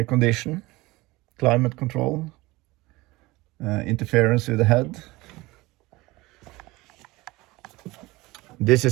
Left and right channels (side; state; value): left; quieter; 20.9 dB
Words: condition, climate control, interference with the head. This